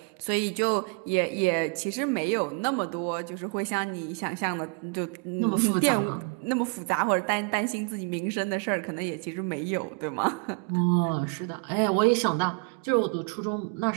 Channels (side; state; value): left; quieter; 35.5 dB